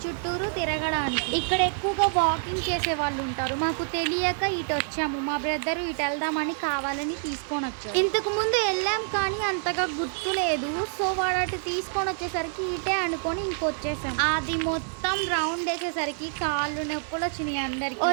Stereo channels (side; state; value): left; silent; digital silence